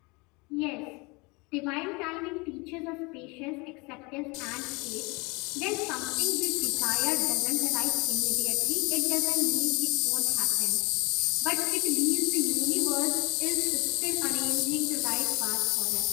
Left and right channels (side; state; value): right; quieter; 27.1 dB